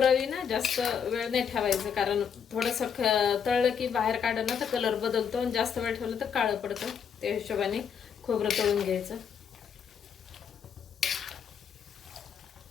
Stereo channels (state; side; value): quieter; right; 7.4 dB